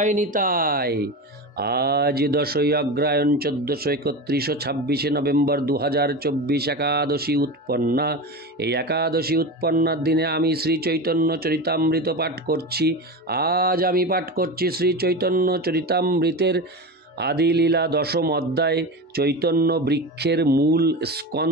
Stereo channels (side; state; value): both; normal; correlation 0.24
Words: নিতাই। আজ 10ই অগ্রহায়ণ 1431 26 নভেম্বর 2024 একাদশী উৎপন্না। এই একাদশী উৎপন্নার দিনে আমি শ্রী চৈতন্য চরিতামৃত পাঠ করছি। আজ আমি পাঠ করছি শ্রী চৈতন্য চরিতামৃতের আদিলীলা দশম অধ্যায়, চৈতন্য বৃক্ষের মূল